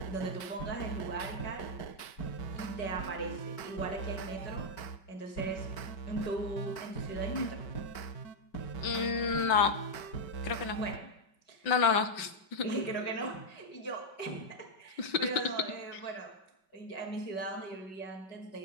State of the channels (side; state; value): right; late; 5.2 ms